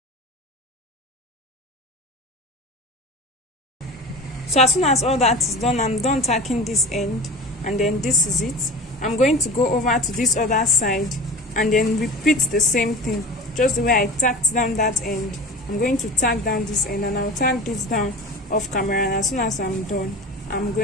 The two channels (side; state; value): both; normal; correlation 0.34